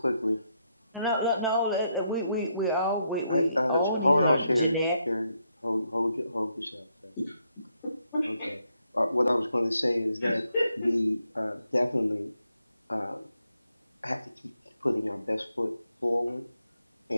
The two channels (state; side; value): inverted; both; correlation -0.78